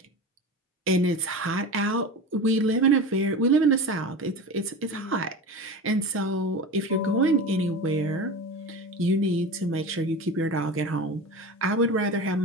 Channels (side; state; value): both; normal; correlation 0.29